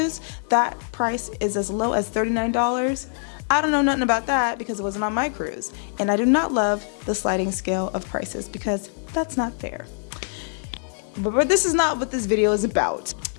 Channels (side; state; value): right; silent; 60 dB below the other